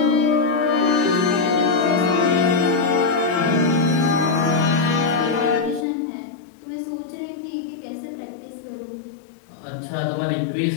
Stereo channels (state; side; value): drops out; right; at 5.9 s